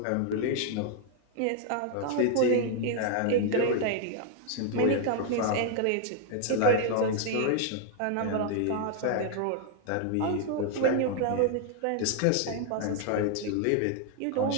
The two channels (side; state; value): both; different; correlation 0.00